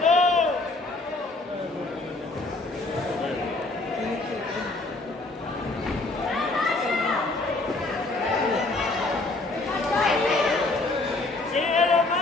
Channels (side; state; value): right; quieter; 3.1 dB